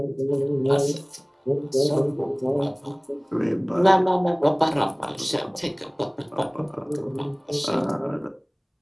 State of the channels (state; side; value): identical; both; correlation 1.00